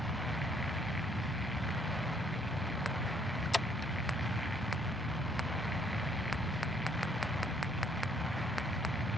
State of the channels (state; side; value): normal; both; correlation 0.66